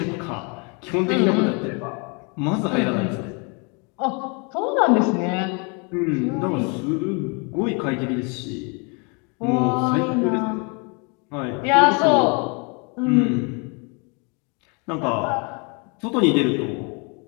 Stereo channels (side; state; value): right; quieter; 33.3 dB